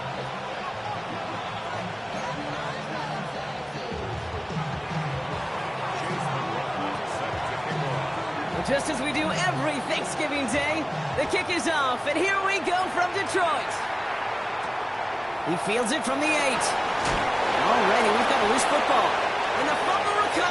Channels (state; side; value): identical; both; correlation 1.00